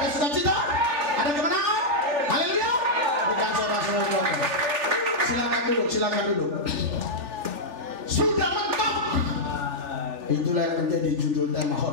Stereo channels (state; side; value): late; left; 3.4 ms